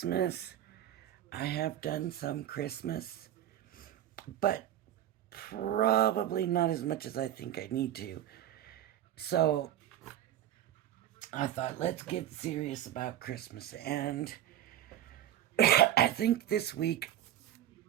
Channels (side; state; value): left; quieter; 11.9 dB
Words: I have done some Christmas, but probably not as much as I think I need to. So I thought, let's get serious about Christmas. And I think this week